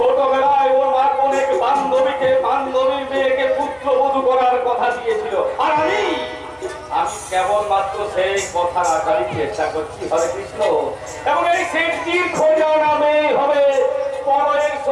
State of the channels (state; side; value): identical; both; correlation 1.00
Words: ওর মা অনেক বান্ধবীর মেয়েকে পুত্রবধূ করার কথা দিয়েছিল, আর আমি কেবলমাত্র সেই কথা রাখারই চেষ্টা করছি। হরে কৃষ্ণ। এবং এই সেটটির খোঁজা নামে হবে পরের